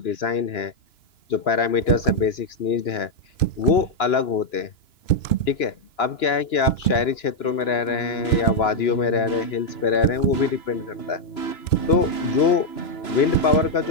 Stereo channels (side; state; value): right; late; 2.9 ms